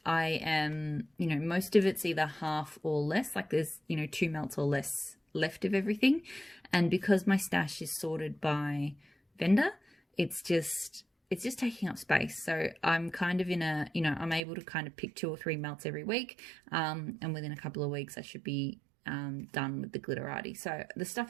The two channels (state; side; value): drops out; left; at 14.4 s